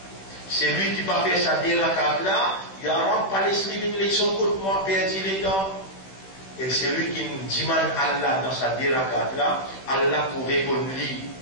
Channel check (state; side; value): late; right; 16 ms